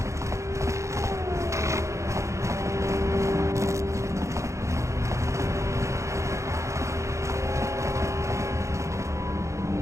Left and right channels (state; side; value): late; left; 0.14 ms